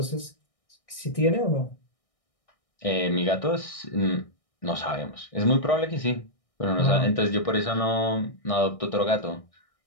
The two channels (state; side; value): late; right; 1.6 ms